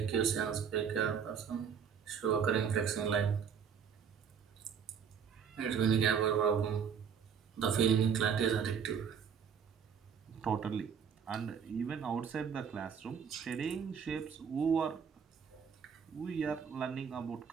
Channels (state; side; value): quieter; left; 7.1 dB